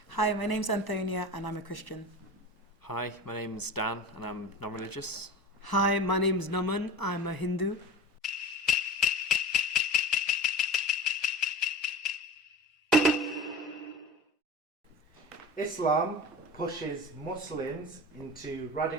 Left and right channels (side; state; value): both; normal; correlation 0.33